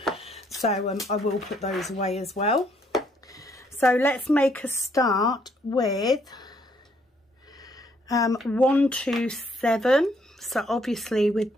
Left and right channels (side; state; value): both; normal; correlation 0.69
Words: So I will put those away as well. So let's make a start with 127. So obviously with